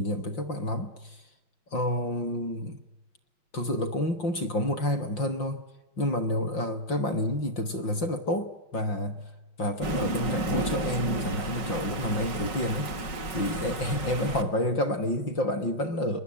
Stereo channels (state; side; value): late; right; 5.4 ms